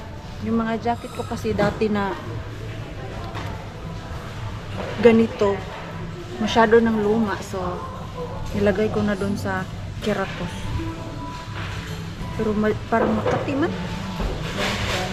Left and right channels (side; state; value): both; identical; correlation 1.00